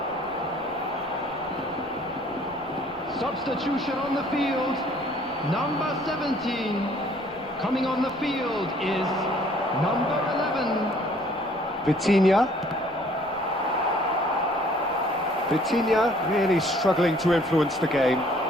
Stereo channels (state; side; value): noise; right; rumble, 25 dB below the sound